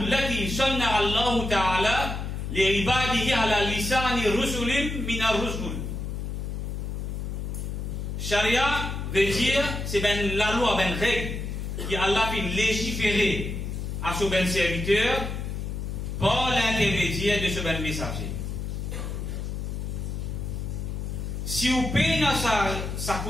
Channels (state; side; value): noise; left; hum, 4 dB below the sound